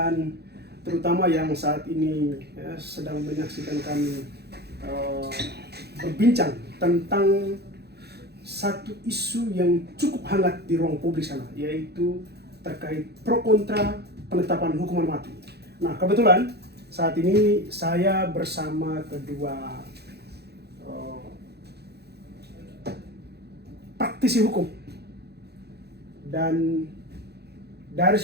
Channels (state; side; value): late; left; 0.48 ms